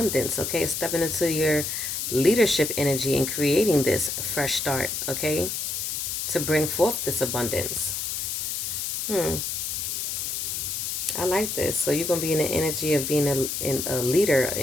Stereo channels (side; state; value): left; noise; hiss, 2 dB below the sound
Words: okay? Stepping into your leadership energy and creating this fresh start, okay? To bring forth this abundance. I like this. So you're going to be in the energy of being a leader